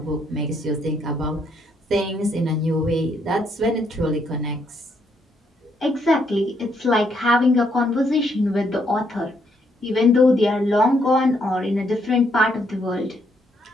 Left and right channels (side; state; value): both; normal; correlation 0.73